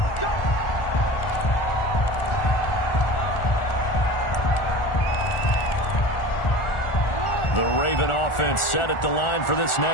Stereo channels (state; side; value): late; right; 1.4 ms